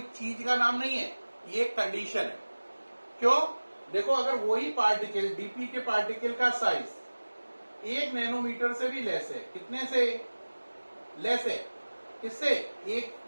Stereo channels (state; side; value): inverted; both; correlation -1.00